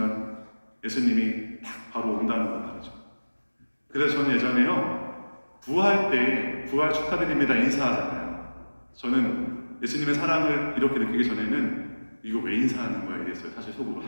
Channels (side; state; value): both; inverted; correlation -1.00